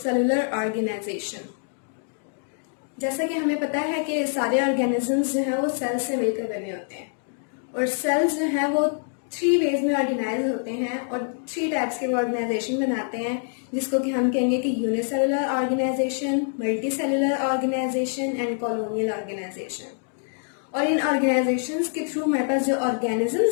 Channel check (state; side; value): silent; right; 61 dB below the other